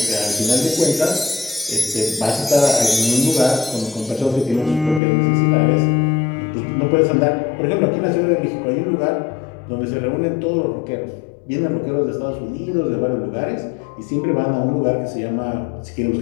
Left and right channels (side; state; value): right; drops out; at 5.0 s